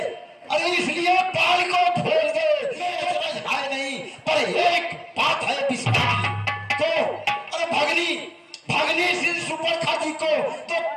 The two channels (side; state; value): both; identical; correlation 1.00